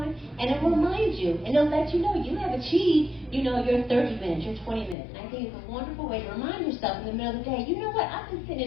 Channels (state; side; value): drops out; right; at 5.0 s